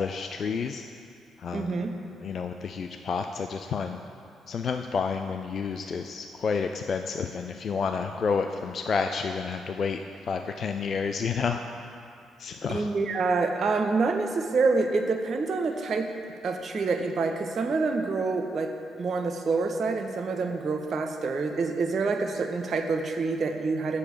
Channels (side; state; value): both; normal; correlation 0.79